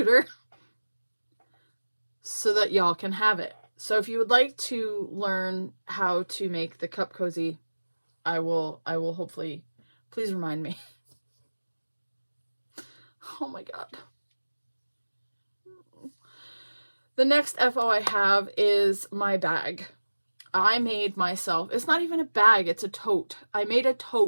so that y'all can have it. So if you would like to learn how to make the cup cozy, I will hopefully, please remind me. Oh my God. The next FO I have is my bag. I made myself, it's not even a bag, it's a tote. I made a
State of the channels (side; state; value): both; inverted; correlation -1.00